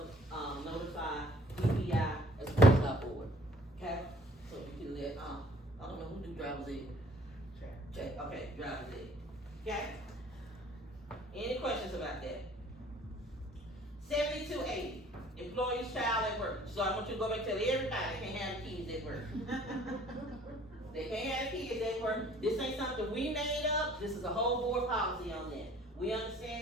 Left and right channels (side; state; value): both; normal; correlation 0.55